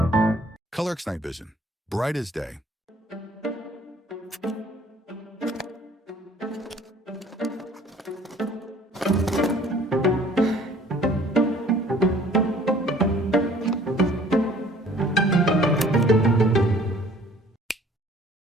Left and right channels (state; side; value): normal; both; correlation 0.54